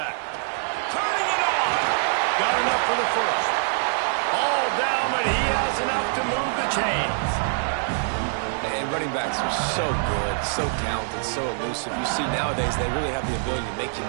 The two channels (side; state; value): left; silent; digital silence